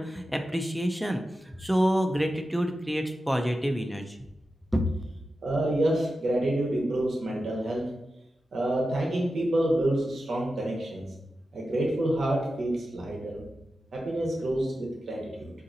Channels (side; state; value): both; normal; correlation 0.92